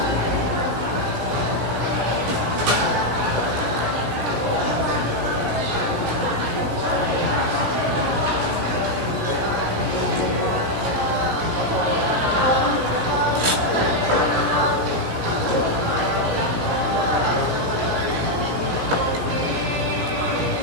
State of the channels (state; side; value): late; left; 16 ms